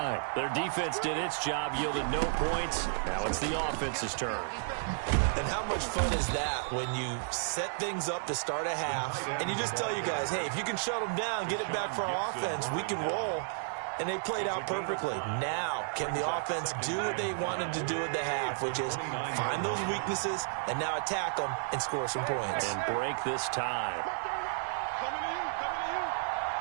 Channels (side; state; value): left; silent; digital silence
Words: Their defense did its job, yielded no points. Now it's the offense's turn. And how much fun is that when you set things up to start a half and you just tell you guys, hey, if you can shut them down, get it back for our offense, we can roll. and they played out perfectly. Now, can the offense do what they wanted to do at the half, which is find those weaknesses and now attack them and score some points. And break this tie.